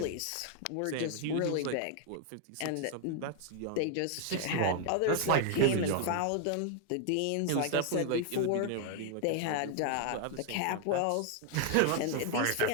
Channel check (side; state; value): both; different; correlation 0.00